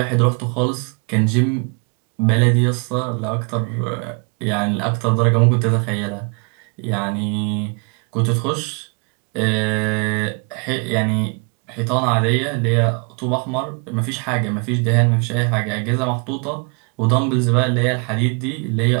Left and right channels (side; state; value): left; quieter; 34.8 dB